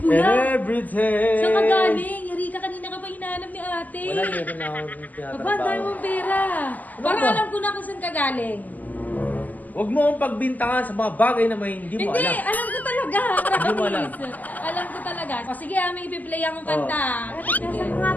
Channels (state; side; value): late; right; 0.080 ms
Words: Everything! Saan ka galing? Erika, kanina ka pa hinahanap ni ate. Wala, meron na akong Aba, tinatrabaho. dahil mong pera. Para ba? alam ko na kung saan ka galing. Huwag mo akong pagbintangan sa mga bagay na may hindi mo Hindi, alam. alam ko talaga. Hindi mo alam. Promise. Alam ko talaga. O sige, may ipi-play akong kanta. Sige. Saan nga